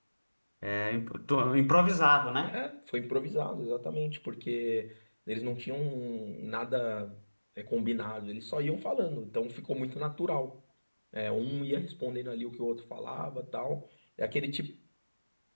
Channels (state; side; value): inverted; both; correlation -1.00